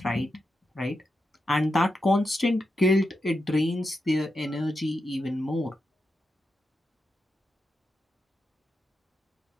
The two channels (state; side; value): normal; both; correlation 0.87